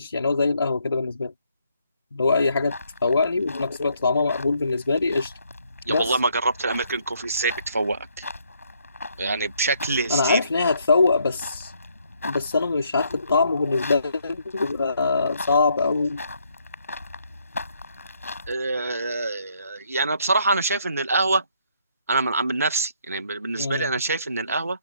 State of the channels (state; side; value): inverted; both; correlation -0.70